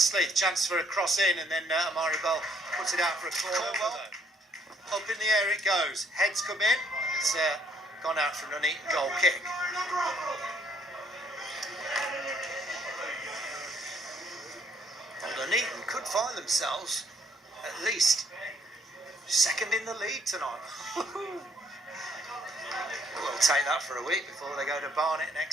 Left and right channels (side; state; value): both; normal; correlation 0.66